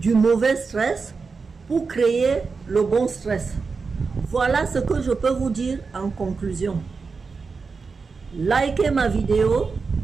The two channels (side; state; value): left; quieter; 4.8 dB